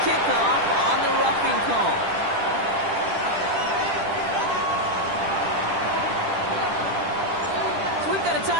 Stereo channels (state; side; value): late; left; 10 ms